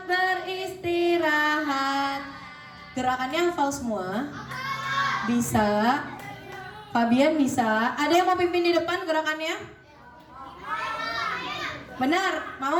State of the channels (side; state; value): both; identical; correlation 1.00